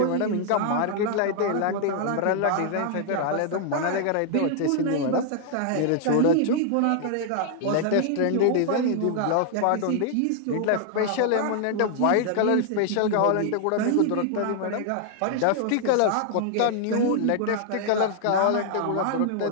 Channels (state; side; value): different; both; correlation 0.00